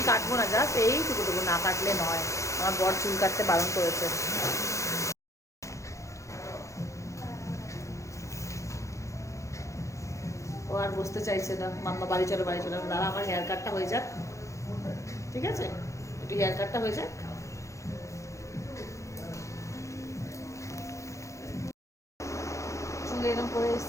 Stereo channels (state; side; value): late; right; 0.15 ms